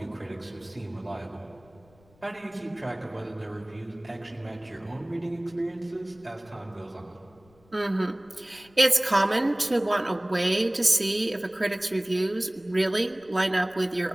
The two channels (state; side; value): noise; left; rumble, 30 dB below the sound